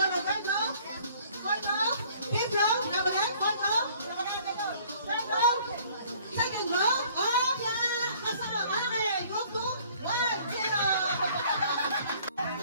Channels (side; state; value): both; inverted; correlation -0.56